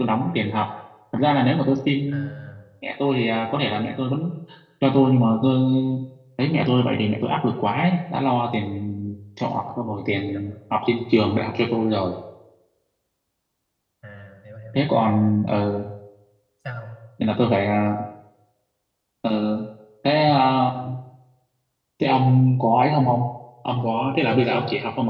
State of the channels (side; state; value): both; identical; correlation 1.00